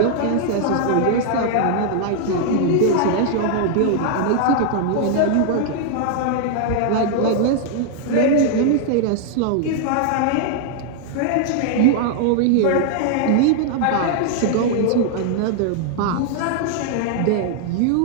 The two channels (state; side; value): different; both; correlation 0.00